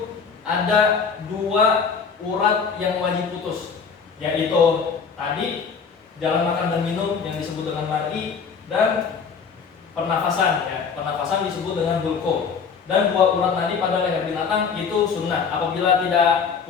ada dua urat yang wajib putus, yaitu tadi jalan makan dan minum yang disebut dengan mar'i, dan pernafasan ya, pernafasan disebut dengan hulqum. Dan dua urat nadi pada leher binatang itu sunnah. Apabila tidak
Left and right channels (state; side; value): quieter; right; 5.9 dB